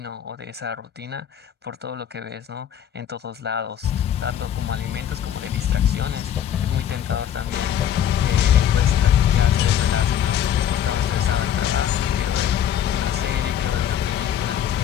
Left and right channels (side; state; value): right; quieter; 9.8 dB